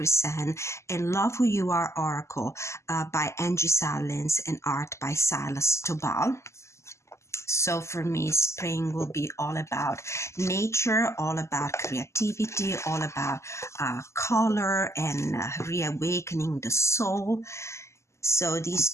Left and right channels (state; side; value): late; right; 0.13 ms